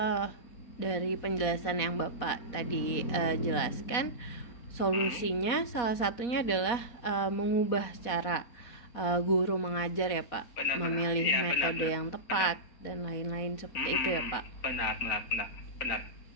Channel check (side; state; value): right; late; 4.2 ms